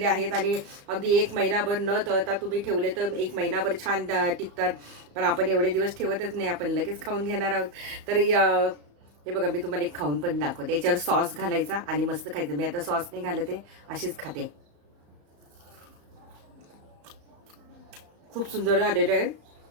आहेत. आणि अगदी 1 महिनाभर न तळता तुम्ही ठेवले तर 1 महिनाभर छान टिकतात. पण आपण एवढे दिवस ठेवतच नाही, आपण लगेच खाऊन घेणार आहोत. तर हे बघा, मी तुम्हाला एक खाऊन पण दाखवते. याच्यावर सॉस घालायचा आणि मस्त खायचं. मी आता सॉस नाही घालते, अशीच खाते. खूप सुंदर आलेलं आहे.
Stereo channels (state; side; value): late; left; 34 ms